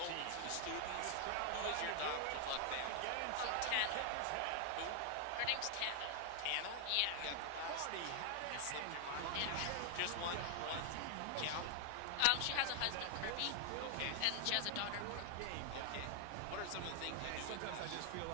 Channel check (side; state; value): both; different; correlation 0.00